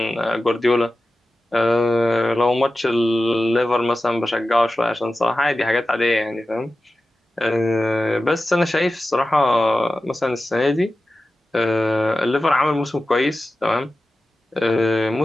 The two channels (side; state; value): both; normal; correlation 0.94